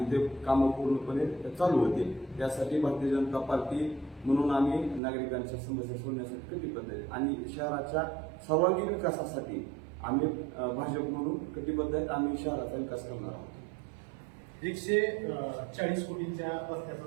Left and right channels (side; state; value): left; drops out; at 5.0 s